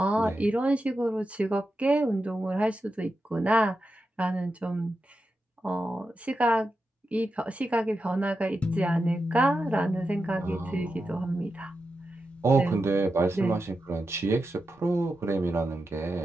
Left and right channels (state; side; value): normal; both; correlation 0.89